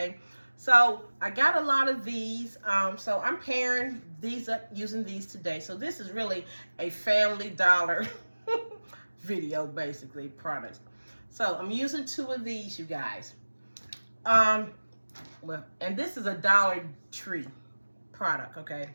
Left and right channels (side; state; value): both; inverted; correlation -1.00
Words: So I got a lot of these. So I'm pairing these up using these today. So this is really a Family Dollar video, basically, products. So I'm using 2 of these, you guys. Well, and this is a Dollar Tree product, okay?